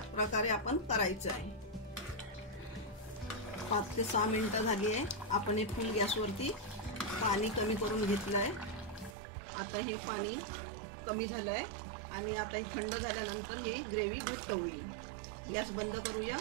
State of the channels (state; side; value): drops out; left; at 9.2 s